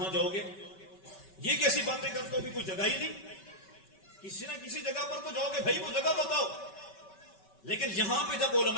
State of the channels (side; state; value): right; late; 5.2 ms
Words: جاؤ گے, یہ کیسی باتیں کرتے ہو بھی کوئی جگہ ہی نہیں, کسی نہ کسی جگہ پر تو جاؤ گے, بھائی وہ جگہ بتاؤ. لیکن یہاں پہ جب